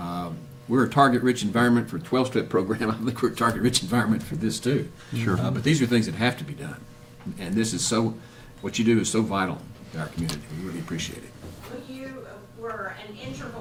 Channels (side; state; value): both; identical; correlation 1.00